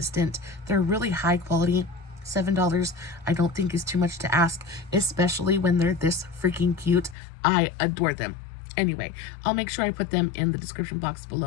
They're really high quality. $7 I don't think is too much to ask, especially when they're this freaking cute. I adore them. Anyway, I'll make sure I put them in the description box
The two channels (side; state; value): right; drops out; at 7.2 s